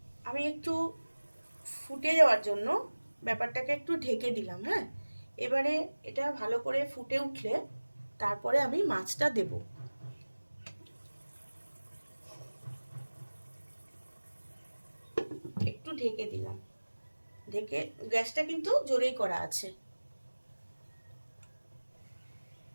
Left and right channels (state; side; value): inverted; both; correlation -1.00